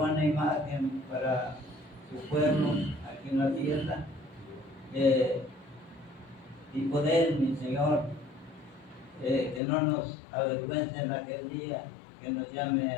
imagen para su pueblo aquí en la tierra, y poder, mi Señor, que no nos avergüence en aquel día, que nos llame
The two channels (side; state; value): right; drops out; at 9.6 s